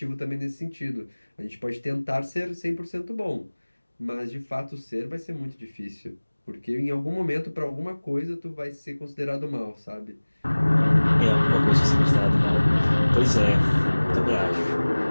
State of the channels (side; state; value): both; inverted; correlation -1.00